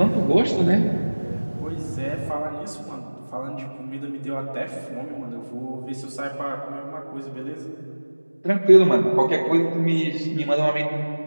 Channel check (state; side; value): inverted; both; correlation -1.00